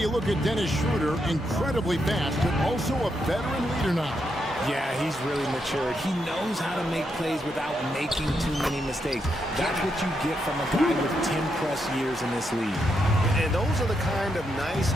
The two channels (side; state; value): both; normal; correlation 0.81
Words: look at Dennis Schroeder, incredibly fast, but also a veteran leader now. Yeah, he's really matured. He knows how to make plays without making too many mistakes. That's what you get from a guy with 10-plus years in this league. And those are the kind of nice